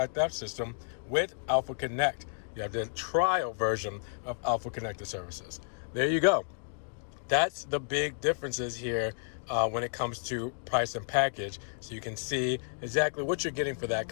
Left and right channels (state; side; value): silent; right; digital silence